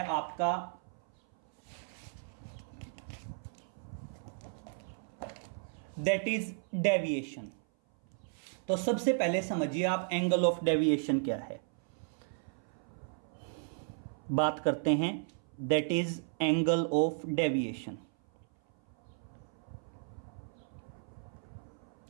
आपका दैट इज डेविएशन। तो सबसे पहले समझिए आप एंगल ऑफ डेविएशन क्या है। बात करते हैं that is angle of deviation.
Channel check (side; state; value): left; silent; 55 dB below the other